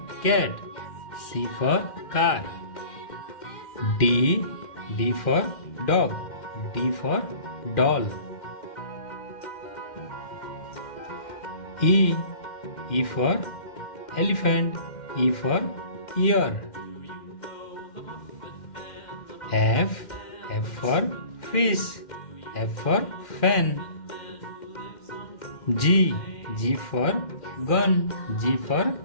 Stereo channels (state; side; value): late; right; 2.1 ms